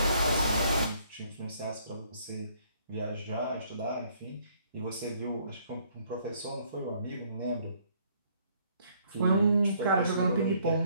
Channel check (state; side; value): inverted; both; correlation -0.65